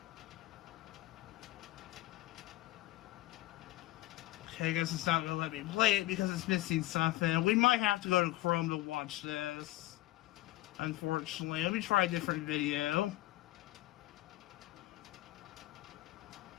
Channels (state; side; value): quieter; right; 17.3 dB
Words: Okay, I guess it's not going to let me play it because it's missing something. We might have to go to Chrome to watch this, unfortunately. Let me try a different video.